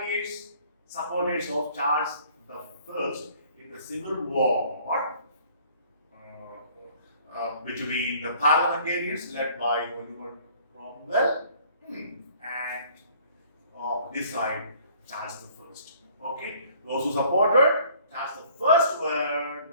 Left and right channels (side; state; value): both; inverted; correlation -0.56